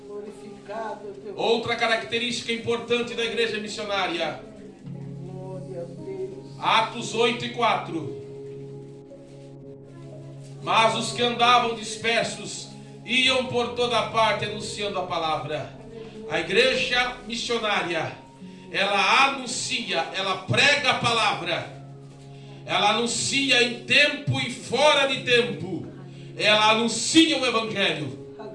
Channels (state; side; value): identical; both; correlation 1.00